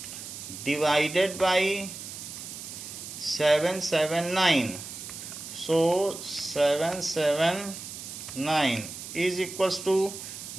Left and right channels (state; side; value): noise; right; hiss, 10 dB below the sound